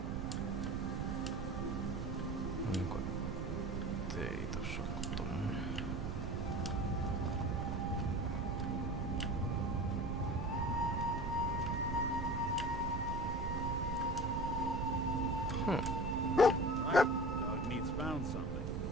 Onko ei tossa oo tommonen? Right. Dog meat's found something.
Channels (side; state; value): right; noise; rumble, 2 dB below the sound